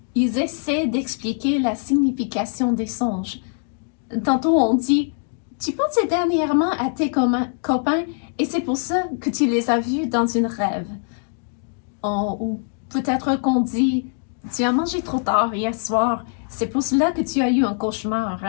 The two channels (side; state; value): right; silent; 61 dB below the other